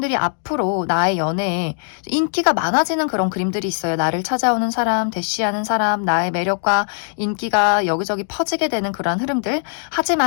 앞으로 나의 연애에 인기가 많아지는 그런 그림들이 있어요. 나를 찾아오는 사람, 대시하는 사람, 나의 매력과 인기가 여기저기 퍼지게 되는 그런 흐름들.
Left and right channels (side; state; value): right; silent; digital silence